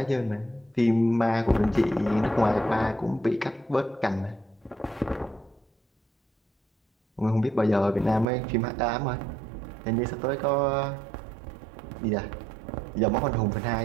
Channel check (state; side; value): drops out; left; at 8.2 s